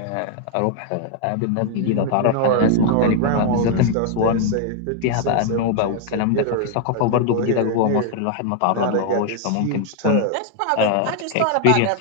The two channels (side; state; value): both; different; correlation 0.00